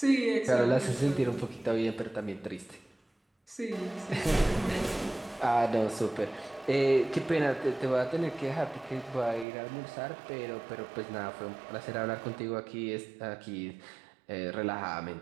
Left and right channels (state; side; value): drops out; left; at 9.5 s